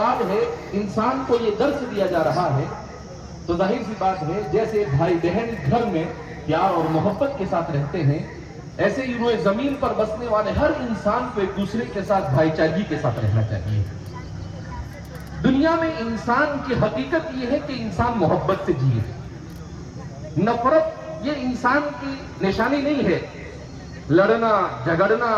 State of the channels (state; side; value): identical; both; correlation 1.00